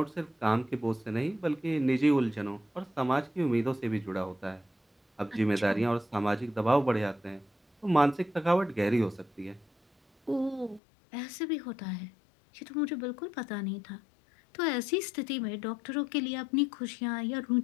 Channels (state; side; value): drops out; right; at 10.8 s